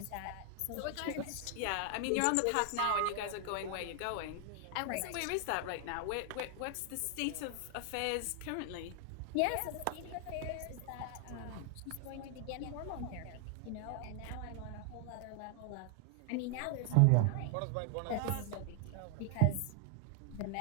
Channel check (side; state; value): both; different; correlation 0.00